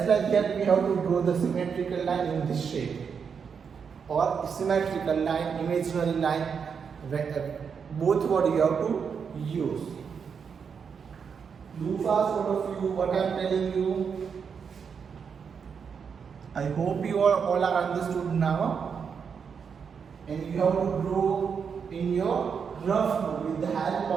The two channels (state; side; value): quieter; left; 6.5 dB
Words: like that we have to draw the symmetrical line in this shape, or symmetrical line, imaginary line, both what you have to use. Do fast, all of you, what I am telling you. I hope you all are understood now, and you have to draw in your rough mode with the help